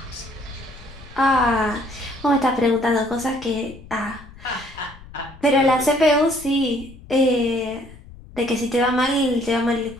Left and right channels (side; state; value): left; noise; rumble, 19 dB below the sound